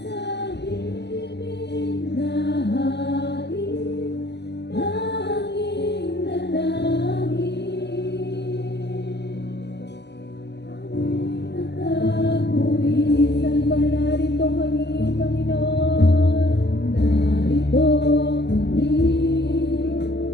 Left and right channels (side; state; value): right; late; 0.50 ms